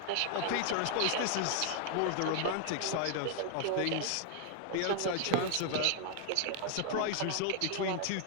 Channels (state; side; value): different; both; correlation 0.00